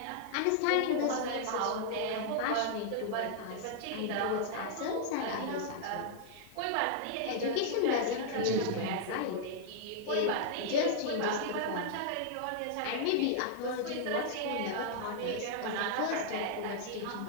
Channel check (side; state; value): both; different; correlation -0.01